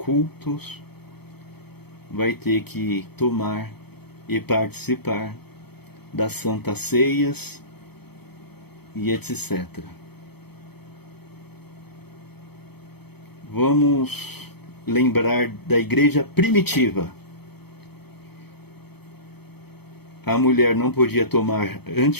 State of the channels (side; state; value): right; late; 0.97 ms